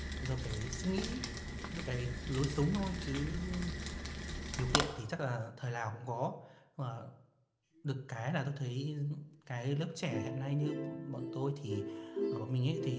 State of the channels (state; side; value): identical; both; correlation 1.00